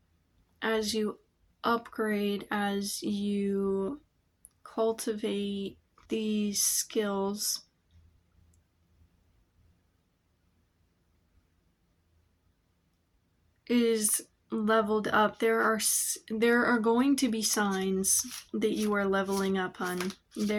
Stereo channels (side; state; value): both; identical; correlation 1.00